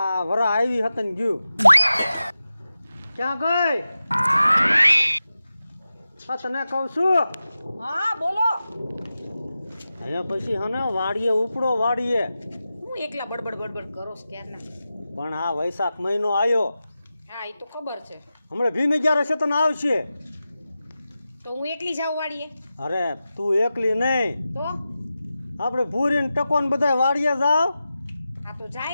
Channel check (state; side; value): inverted; both; correlation -0.93